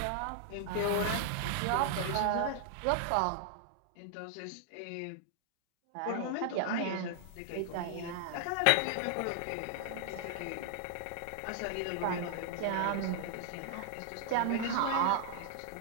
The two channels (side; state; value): both; different; correlation -0.01